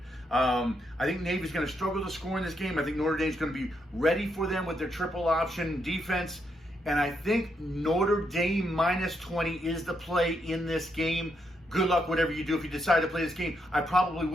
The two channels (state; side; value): normal; both; correlation 0.79